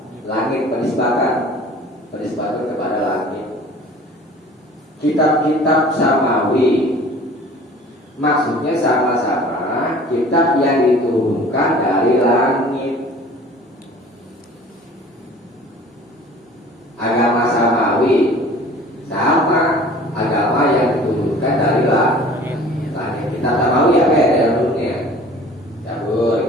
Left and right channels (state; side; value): normal; both; correlation 0.47